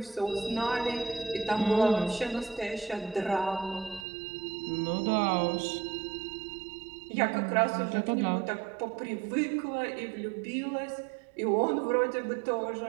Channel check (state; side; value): drops out; left; at 4.0 s